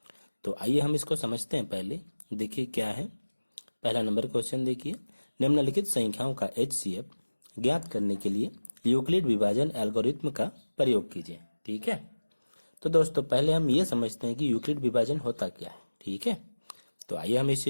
तो आइए हम इसको समझते हैं। पहले देखिए क्या है। पहला नंबर क्वेश्चन देखिए, निम्नलिखित संख्याओं का HCF ज्ञात करने के लिए यूक्लिड विभाजन एल्गोरिथ्म का प्रयोग कीजिए। ठीक है, तो दोस्तों पहले हम ये समझते हैं कि यूक्लिड विभाजन होता क्या है। ठीक है, तो आइए हम इस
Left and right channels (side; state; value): both; inverted; correlation -1.00